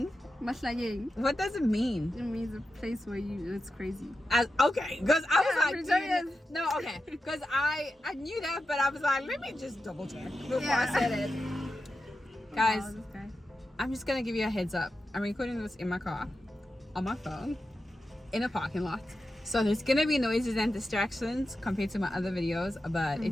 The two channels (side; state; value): both; normal; correlation 0.90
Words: Mahlanyeng. What does it mean? It means a place where it's crazy. Okay, because I was like, Pretoria. no, okay, because I knew that, but I was like, let me just double check before I said it. Guys, Wow, this guy. I'm just gonna give you a heads up. I'm recording this in my car, on my phone, in a parking lot. So there's gonna be noises and distractions compared to my other videos, but